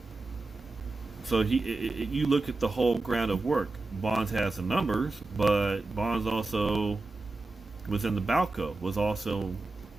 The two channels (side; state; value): left; quieter; 3.3 dB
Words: So you look at the whole ground of work. Bonds has some numbers, but Bonds also was in the Balco, was also